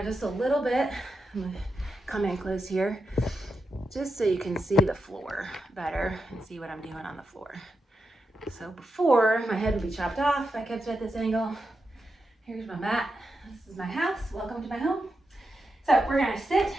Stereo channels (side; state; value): both; normal; correlation 0.87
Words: just a little bit. I'm gonna come in close here, just so you can see the floor better and see what I'm doing on the floor. So before, my head would be chopped off if I kept it at this angle. Here's my mat. This is my house. Welcome to my home. So we're gonna sit